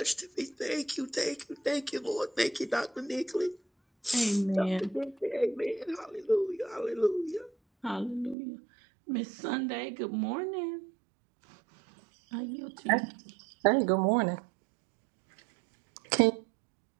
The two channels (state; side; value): drops out; left; at 8.3 s